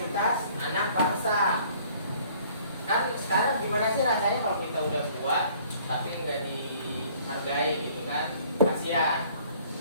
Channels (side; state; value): both; inverted; correlation -0.56